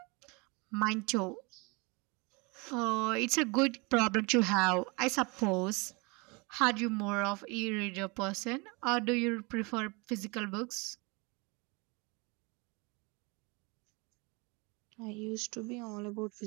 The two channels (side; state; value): left; quieter; 28.4 dB